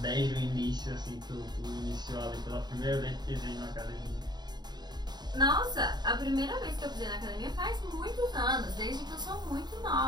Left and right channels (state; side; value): late; left; 0.20 ms